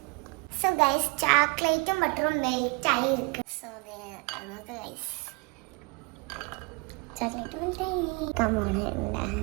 So guys, ചോക്ലേറ്റും ബട്ടറും മെൽറ്റ് ആയി ഇരിക്കും. So നമുക്ക് guys ചോക്ലേറ്റ് മെൽറ്റ് ആയി. Come on.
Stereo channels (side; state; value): left; quieter; 29.0 dB